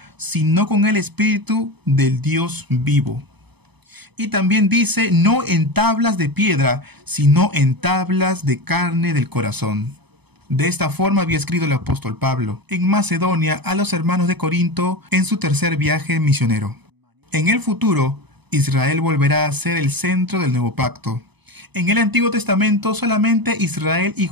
sino con el Espíritu del Dios vivo. Y también dice, no en tablas de piedra, sino en tablas de carne del corazón. De esta forma había escrito el apóstol Pablo en Macedonia a los hermanos de Corinto en su tercer viaje misionero. En el futuro, Israel volverá a ser el centro del nuevo pacto. En el Antiguo Testamento solamente Israel y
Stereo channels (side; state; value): left; late; 0.99 ms